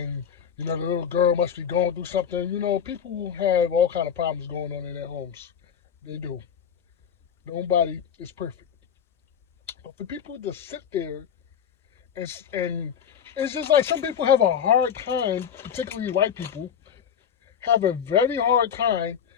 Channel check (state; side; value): quieter; right; 7.9 dB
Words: the little girl must be going through something. People have all kind of problems going on in their homes. They do. Nobody is perfect. But for people to sit there and it's just like some people have a hard time, particularly white people, have a very hard time